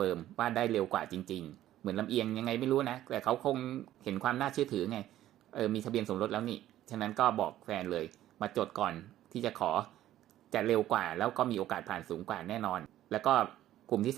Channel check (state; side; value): quieter; left; 13.3 dB